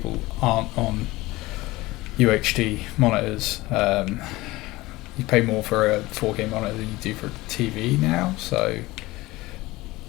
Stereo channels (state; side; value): quieter; right; 19.7 dB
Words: aren't on UHD monitors. You pay more for a 4K monitor than you do for TV now, so